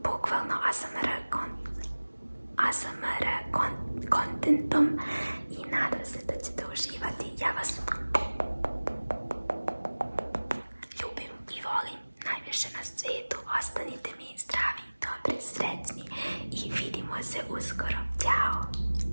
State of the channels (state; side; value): inverted; both; correlation -1.00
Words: bukvalno ASMR kontentom i nadam se da ćete uživati. Ja vas ljubim i volim najviše na svijetu. Ostanite mi zdravi, dobri, srećni i vidimo se uskoro.